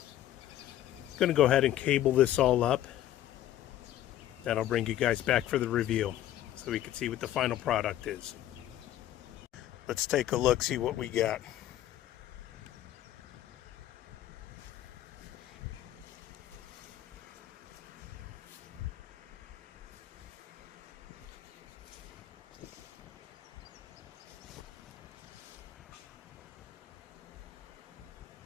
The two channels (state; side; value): quieter; right; 12.8 dB